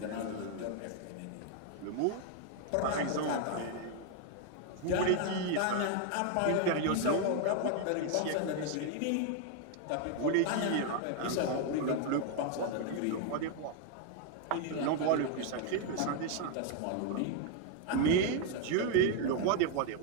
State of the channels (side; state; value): both; different; correlation 0.01